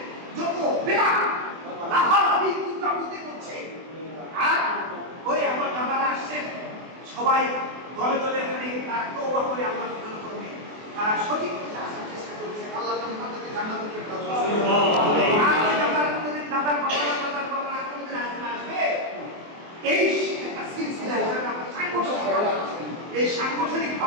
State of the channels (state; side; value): late; left; 24 ms